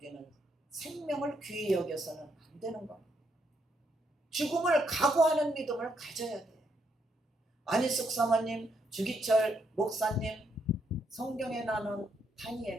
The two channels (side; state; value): both; normal; correlation 0.76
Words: 생명을 귀히 여겨서는 안 되는 겁니다. 죽음을 각오하는 믿음을 가져야 돼요. 안희숙 사모님, 주기철 목사님, 성경에 나오는